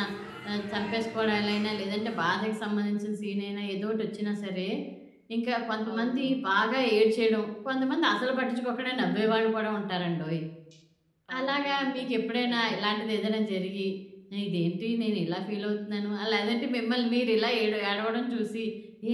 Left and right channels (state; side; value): identical; both; correlation 1.00